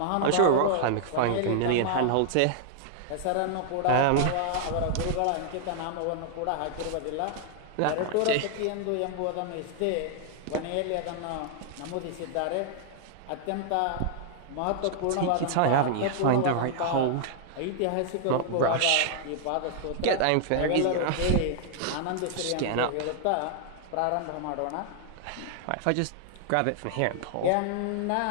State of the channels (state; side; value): different; both; correlation -0.01